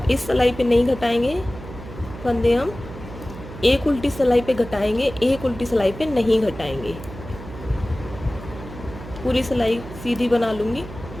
इस सिलाई पे नहीं घटाएंगे फंदे, हम एक उल्टी सिलाई पे घटाएंगे, एक उल्टी सिलाई पे नहीं घटाएंगे। पूरी सिलाई सीधी बना लूँगी।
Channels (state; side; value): noise; right; hum, 13 dB below the sound